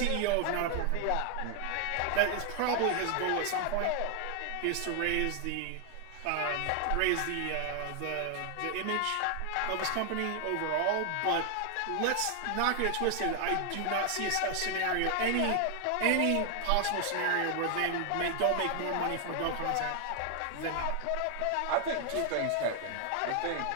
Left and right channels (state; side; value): different; both; correlation 0.00